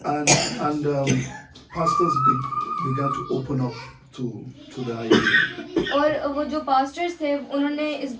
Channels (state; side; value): identical; both; correlation 1.00